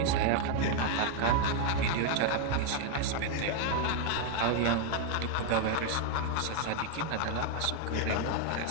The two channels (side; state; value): both; different; correlation 0.00